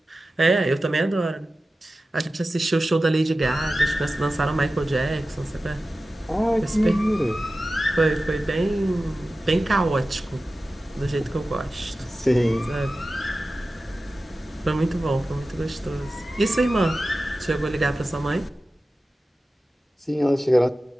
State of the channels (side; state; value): both; normal; correlation 0.95